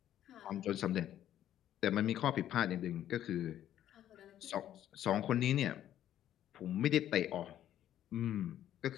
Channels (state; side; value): quieter; right; 11.6 dB